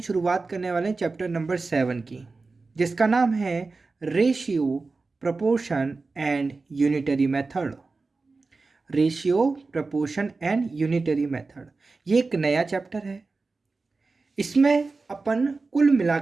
करने वाले हैं चैप्टर नंबर 7 की, जिसका नाम है ratio, proportion and unitary method. Ratio, proportion and unitary method, ये एक नया चैप्टर है। इसमें अपन कुल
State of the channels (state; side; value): quieter; left; 3.9 dB